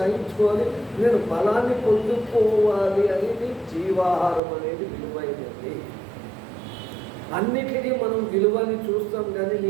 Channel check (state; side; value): drops out; left; at 4.4 s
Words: నేను బలాన్ని పొందుకోవాలి అనేది జీవాహారం అనేది విలువైనది. అన్నిటికీ మనం విలువని చూస్తాం, కానీ